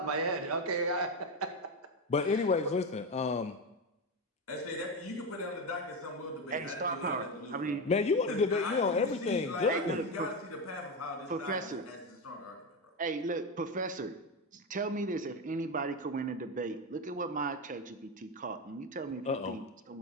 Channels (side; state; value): both; normal; correlation 0.15